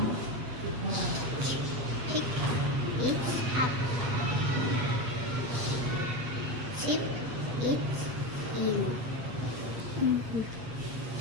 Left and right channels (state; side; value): late; left; 8.2 ms